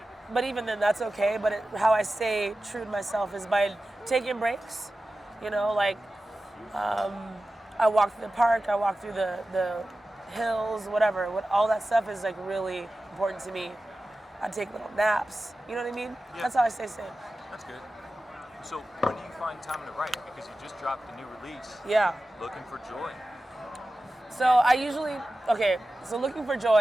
But even then, that's okay. But how I stay true to myself is by taking breaks. You know, like, I walk through the park, I walk through the hills, whatever. All that stuff is like really important to me. I take little naps. You know what I mean? Yeah. That's how I stay sane. That's good. So when do you find time to write? Because you just dropped a new release. Yeah. Looking for Joy. So I usually, so Looking for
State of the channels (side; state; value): both; normal; correlation 0.94